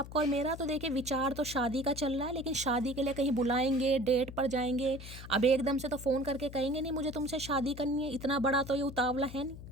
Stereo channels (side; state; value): left; noise; hum, 13 dB below the sound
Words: और मेरा। तो देखिए विचार तो शादी का चल रहा है, लेकिन शादी के लिए कहीं बुलाएंगे, डेट पर जाएंगे, अब एकदम से तो फ़ोन करके कहेंगे नहीं मुझे तुमसे शादी करनी है, इतना बड़ा तो ये उतावला है नहीं।